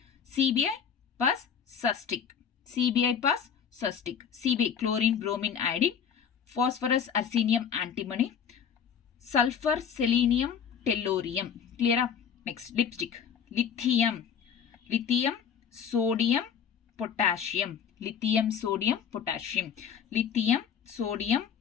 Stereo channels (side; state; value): right; quieter; 7.5 dB